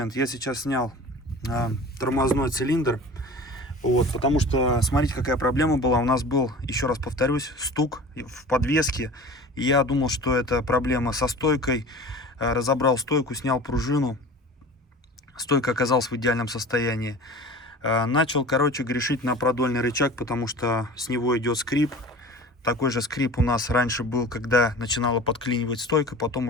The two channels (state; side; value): normal; both; correlation 0.39